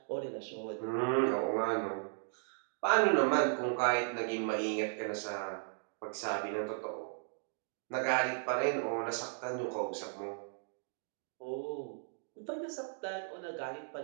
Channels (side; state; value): left; silent; digital silence